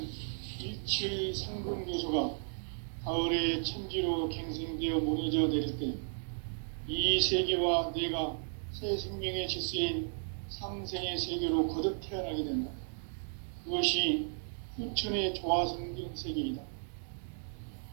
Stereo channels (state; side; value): silent; left; digital silence